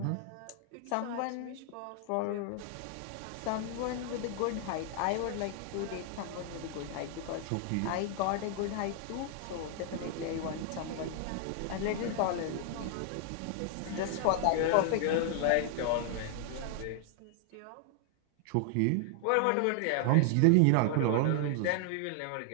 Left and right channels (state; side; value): different; both; correlation 0.00